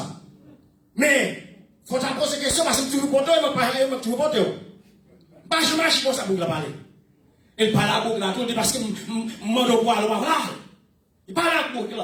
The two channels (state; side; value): identical; both; correlation 1.00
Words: Mais, faut t'en poser des questions, parce que tu veux compter, mais tu veux compter. Pas chômage comme ça, Tibouk là, parler. Il parle à beaucoup là, tout parce que mon droit là, voilà. Il parle à beaucoup